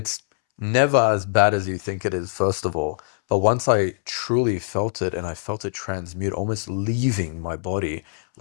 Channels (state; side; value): silent; right; 63 dB below the other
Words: never as bad as you think it is, first of all. But once I truly felt it and I felt it transmute, almost leaving my body